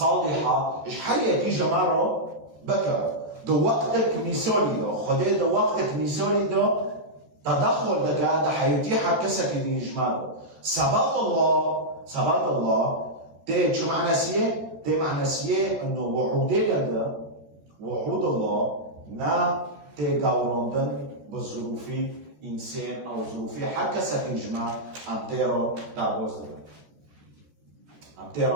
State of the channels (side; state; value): left; late; 13 ms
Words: ايش حيه كي جماعه بكر دو وقتك مثالي دو خدا دو وقتك مثالي دو تدخل دقا حيتيحها كسك دي جماعه ثبات الله ده شو معنى سيه ده معنى سيه انه وعود الله نا تجاورندن بظروف انسان او ظروف حق كسك جماعه امتيرو داغوزده